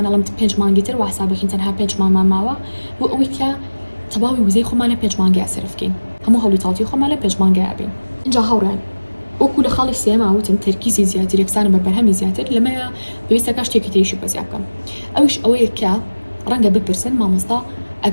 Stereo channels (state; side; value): inverted; both; correlation -1.00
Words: 5 مانگی تر واسابەکەین تەنها 5 مانگمان ماوە بۆ ئەوەی کە تەواوی وزەی خۆمانە 5 مانگی ئاسرفکەین هەموو هەوڵی تاڵتی خۆمان لە 5 مانگی ئابین اینجا هەوڕێن وەکو لە خاڵی سێما وتم تەرکیزی زیاتر یەکسانە بە بەرهەمی زیاتر لەمەیە پێویستەکە شتێکی تریشی بەزیا بکەم ئەوش ئەوەیە کە ڕەنگە بپرسن مامۆستا